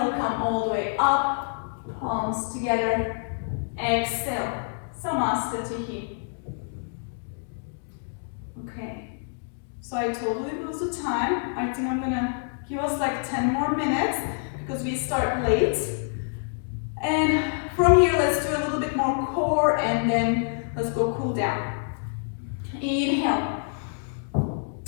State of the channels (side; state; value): right; silent; digital silence